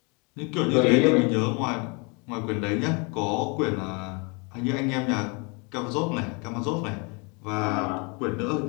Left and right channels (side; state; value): right; quieter; 31.7 dB